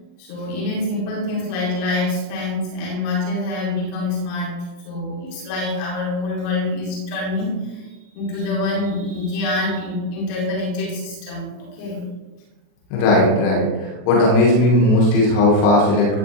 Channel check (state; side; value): late; right; 40 ms